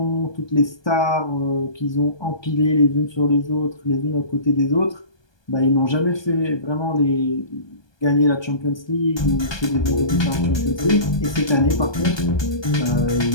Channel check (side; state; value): right; late; 1.2 ms